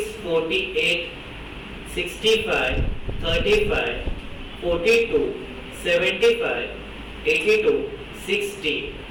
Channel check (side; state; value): both; identical; correlation 1.00